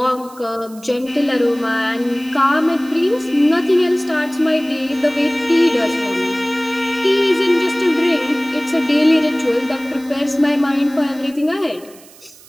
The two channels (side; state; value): right; noise; hiss, 23 dB below the sound